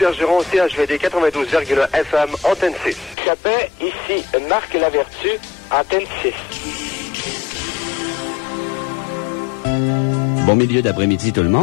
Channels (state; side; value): drops out; right; at 3.2 s